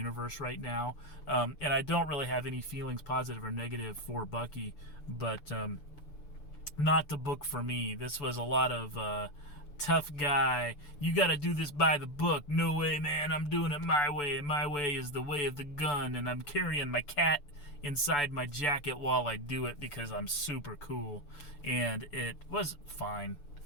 right now. And I don't really have any feelings, positive or negative, for Bucky. But not the book for me. This was a lot of tough guy. You got to do this by the book. No way, man. I'm doing it my way. My way is the way of the gun. And I'm carrying my cat inside my jacket while I do it because I'm super cool. And it was fine.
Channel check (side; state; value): right; late; 6.9 ms